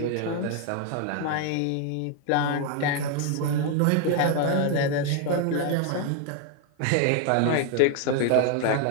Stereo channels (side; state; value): both; different; correlation 0.00